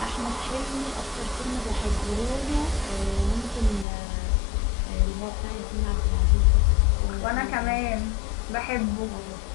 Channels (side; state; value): right; drops out; at 3.9 s